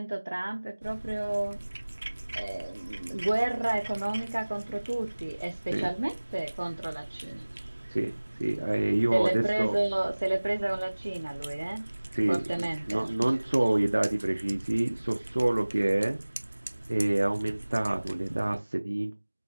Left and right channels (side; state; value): both; inverted; correlation -1.00